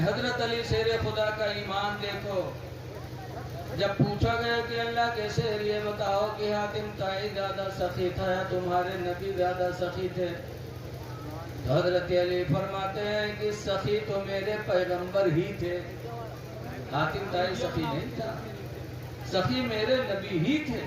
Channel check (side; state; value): both; identical; correlation 1.00